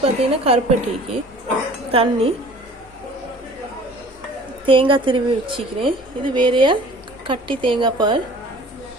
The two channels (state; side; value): normal; both; correlation 0.48